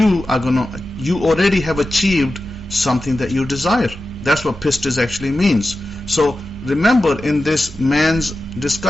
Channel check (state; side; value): normal; both; correlation 0.93